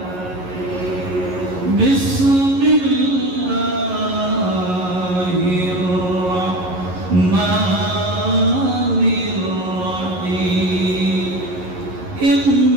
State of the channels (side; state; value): left; late; 11 ms